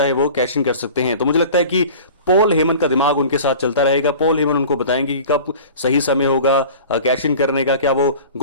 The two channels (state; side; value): inverted; both; correlation -0.41